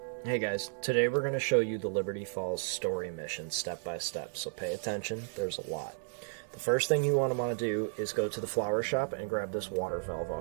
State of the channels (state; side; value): silent; left; digital silence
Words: Hey guys, today we're going to show you the Liberty Falls story mission step by step, so pay attention, there's a lot. The first thing you want to do is go to the flower shop and grab this water valve